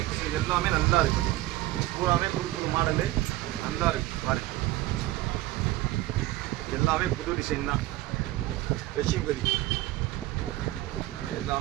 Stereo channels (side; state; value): left; quieter; 16.8 dB